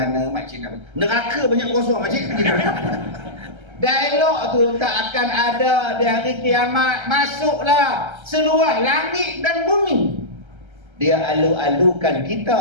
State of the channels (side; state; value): left; late; 1.3 ms